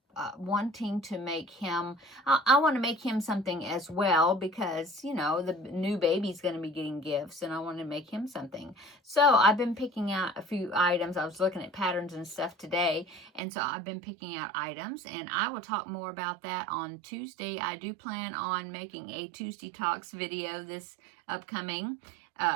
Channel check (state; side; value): drops out; left; at 13.4 s